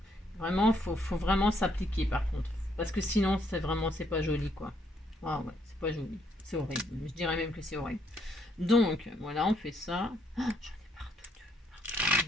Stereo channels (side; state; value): both; normal; correlation 0.72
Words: Vraiment, faut vraiment s'appliquer par contre, parce que sinon c'est pas joli quoi. Ah ouais, c'est pas joli, c'est horrible, je dirais même que c'est horrible. Donc voilà, on fait ça. Oh, j'en ai